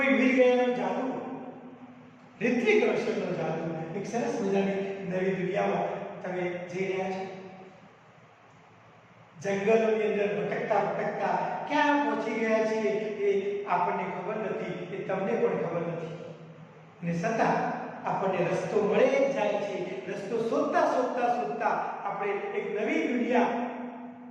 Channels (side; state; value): both; identical; correlation 1.00